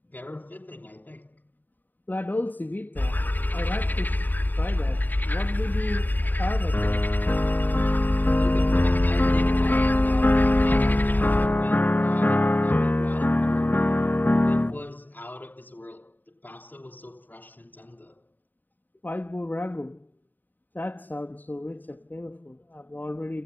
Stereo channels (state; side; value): late; right; 0.088 ms